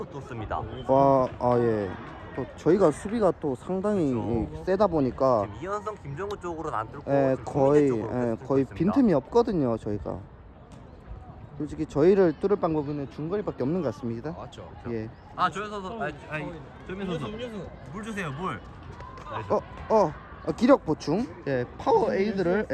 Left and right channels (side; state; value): both; identical; correlation 1.00